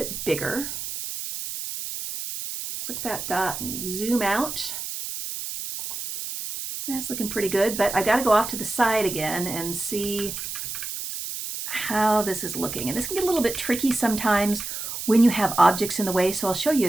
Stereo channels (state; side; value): noise; right; hiss, 6 dB below the sound